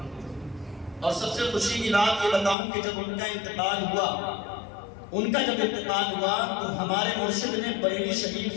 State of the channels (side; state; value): right; drops out; at 2.6 s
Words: اور سب سے خوشی کی بات یہ بتاؤں کہ جب ان کا انتقال ہوا تو ہمارے مرشد نے بریلی